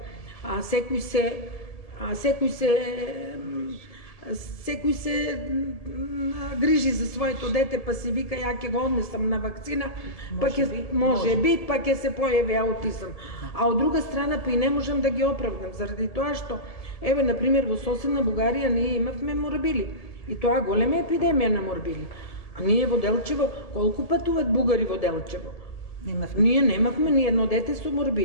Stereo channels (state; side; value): late; right; 1.7 ms